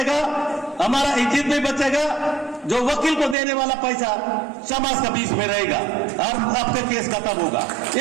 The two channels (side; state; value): left; drops out; at 3.4 s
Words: हमारा इज्जत भी बचेगा, जो वकील को देने वाला पैसा समाज के बीच में रहेगा और आपका केस खत्म होगा।